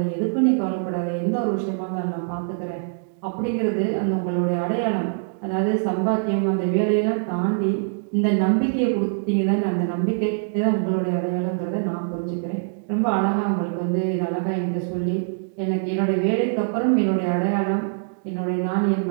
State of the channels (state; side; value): silent; left; digital silence